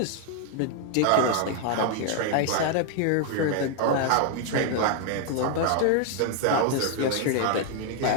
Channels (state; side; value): different; both; correlation 0.00